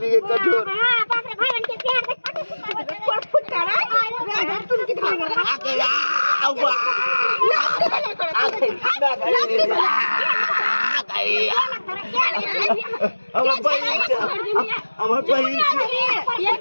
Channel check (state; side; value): inverted; both; correlation -1.00